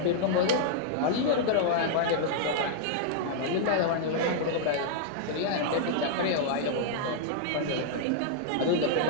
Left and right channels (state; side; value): different; both; correlation -0.01